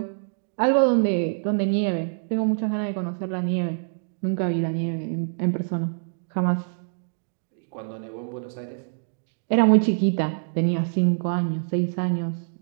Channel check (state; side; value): silent; left; digital silence